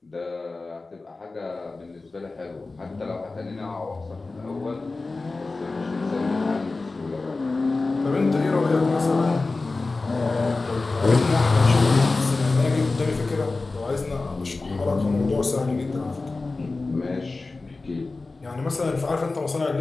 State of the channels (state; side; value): quieter; right; 3.6 dB